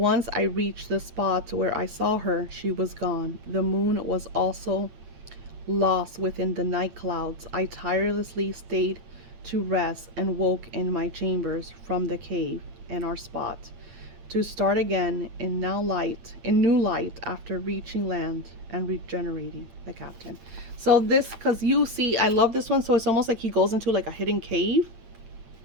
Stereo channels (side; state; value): left; late; 8.8 ms